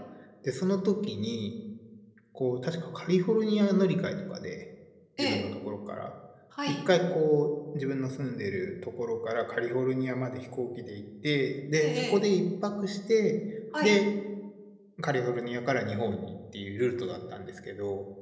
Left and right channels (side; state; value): both; identical; correlation 1.00